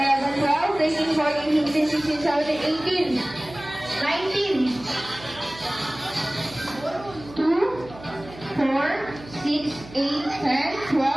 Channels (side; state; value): right; noise; hum, 17 dB below the sound